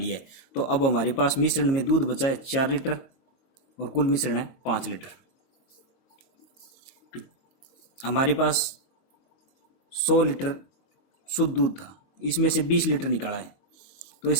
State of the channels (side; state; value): right; late; 22 ms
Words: है। तो अब हमारे पास मिश्रण में दूध बचा है 4 लीटर और कुल मिश्रण है 5 लीटर। हमारे पास 100 लीटर शुद्ध दूध था, इसमें से 20 लीटर निकाला है। तो